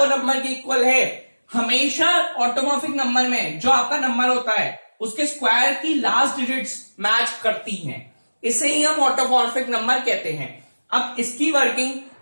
नंबर के इक्वल है। हमेशा ऑटोमॉर्फिक नंबर में जो आपका नंबर होता है उसके स्क्वायर की लास्ट डिजिट्स मैच करती हैं, इसे ही हम ऑटोमॉर्फिक नंबर कहते हैं। अब इसकी वर्किंग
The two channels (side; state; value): both; inverted; correlation -1.00